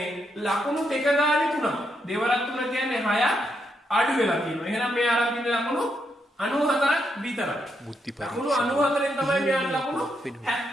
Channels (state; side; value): normal; both; correlation 0.80